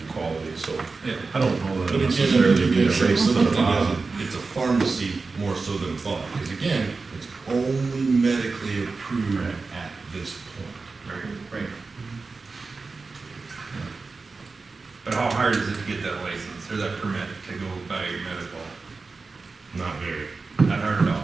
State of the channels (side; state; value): left; quieter; 4.1 dB